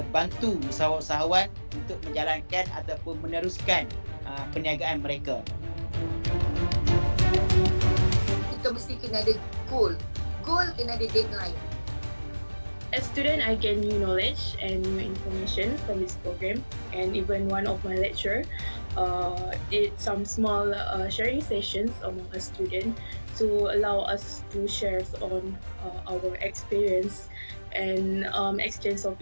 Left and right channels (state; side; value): inverted; both; correlation -1.00